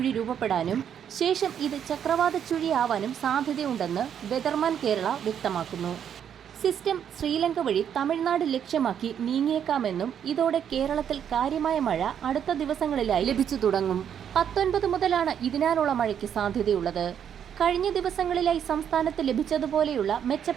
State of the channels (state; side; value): quieter; left; 8.8 dB